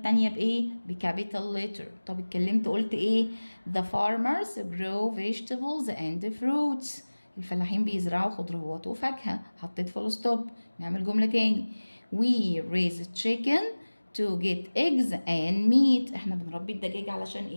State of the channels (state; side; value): inverted; both; correlation -1.00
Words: بايه؟ بكابيتال ليتر. طب اتكلمت قلت ايه؟ The farmers grow vegetables and fruits. الفلاحين بيزرعوا خضروات وفاكهة، حطيت فول ستوب. نعمل جملة تاني. We raise chicken to get eggs and meat. احنا بنربي الدجاج علشان